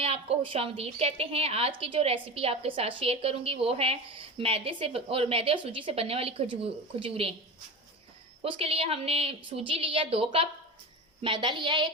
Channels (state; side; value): normal; both; correlation 0.28